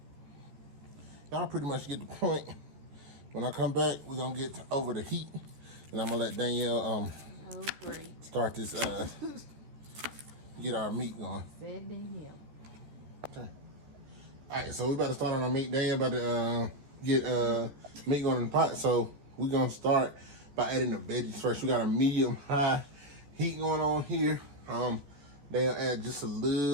Y'all pretty much get the point. When I come back, we're gonna get over the heat, and I'm gonna let Danielle start this get our meat going. Fed to him. Okay. All right, so we about to start on our meat. Daniel about to get meat going in the pot. So we're gonna start by adding the veggies first. We got a medium high heat going on here. They'll add just a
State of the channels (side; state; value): left; late; 14 ms